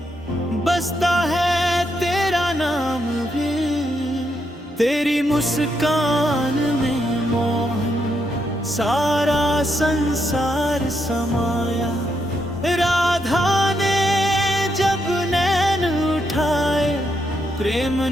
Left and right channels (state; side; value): normal; both; correlation 0.79